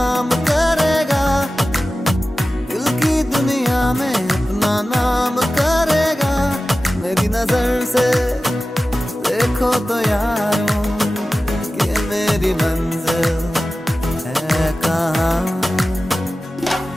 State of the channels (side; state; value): both; normal; correlation 0.95